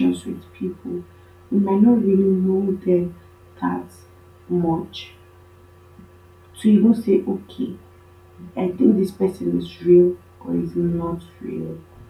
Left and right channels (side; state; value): both; identical; correlation 1.00